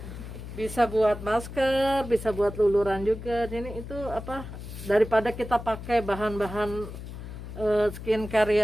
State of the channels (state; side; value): noise; left; hum, 11 dB below the sound